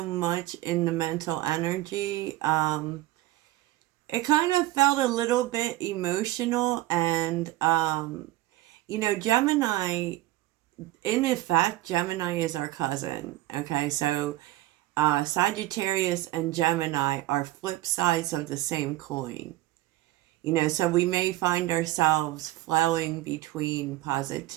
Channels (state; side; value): quieter; left; 16.5 dB